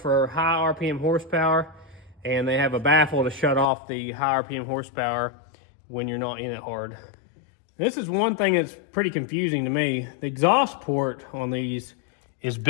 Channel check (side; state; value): right; drops out; at 3.7 s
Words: high RPM horsepower, and they have a baffle to shut off the high RPM horsepower when you're not in it hard. This is one thing that's pretty confusing to me. The exhaust port on these is